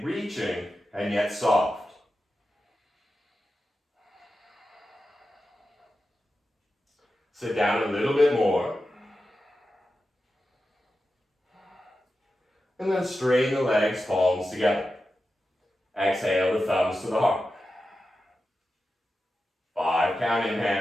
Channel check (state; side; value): normal; both; correlation 0.91